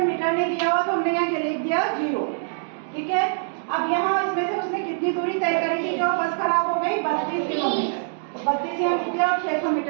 मीटर ने दिया हुआ तो हमने यहाँ लिख दिया 0। ठीक है, अब यहाँ इसमें से उसने कितनी दूरी तय करी थी, जो बस खराब हो गई, 32 किलोमीटर। तो 32 यहाँ लिख दिया और 600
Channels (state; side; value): silent; left; digital silence